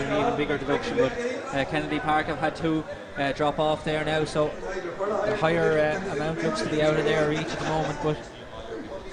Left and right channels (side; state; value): both; identical; correlation 1.00